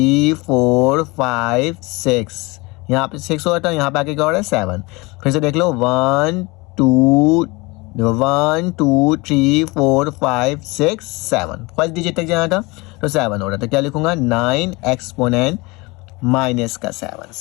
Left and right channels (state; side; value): quieter; right; 24.9 dB